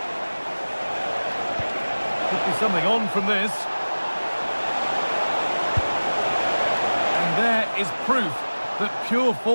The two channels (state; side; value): inverted; both; correlation -1.00